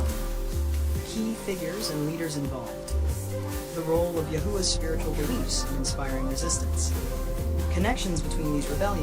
key figures and leaders involved, the role of Yahuwah's spiritual beliefs in inspiring resistance, connections between these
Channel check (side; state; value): both; identical; correlation 1.00